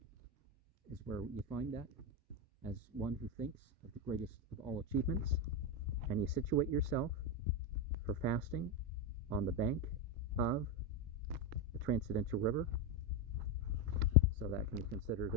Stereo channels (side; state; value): both; normal; correlation 0.10